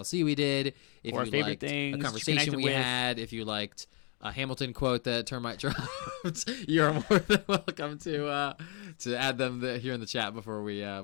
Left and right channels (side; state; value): right; quieter; 37.0 dB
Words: we did, if or you liked things, a conversation we had, if you liked a Hamilton quote that Termite dropped, you're more than welcome to add them here in the chat before we